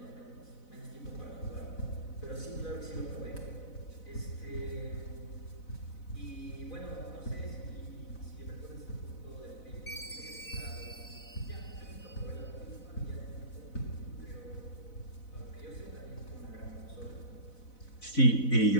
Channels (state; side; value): late; right; 4.0 ms